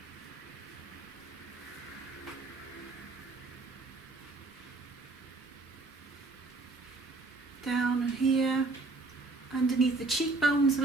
Down here, underneath the cheekbones a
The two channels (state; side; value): quieter; left; 3.5 dB